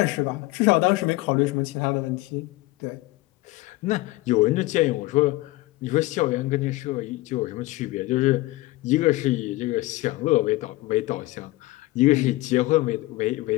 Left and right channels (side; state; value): right; quieter; 19.5 dB